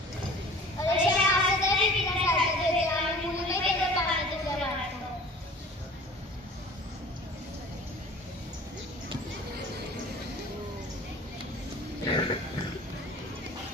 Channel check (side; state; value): both; normal; correlation 0.44